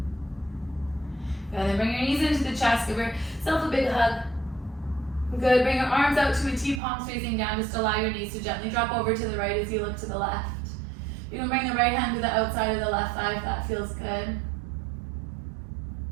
And then bring your knees into the chest, give yourself a big hug. Good, bring your arms out to a T, palms facing down. Just allow your knees to gently drop over to the right as you look to the left. You can bring the right hand to the outside of the left thigh if that feels good.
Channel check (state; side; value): drops out; left; at 6.8 s